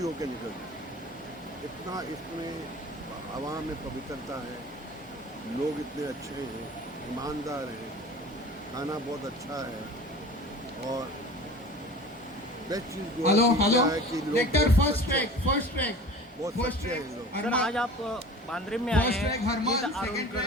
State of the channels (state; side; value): normal; both; correlation 0.40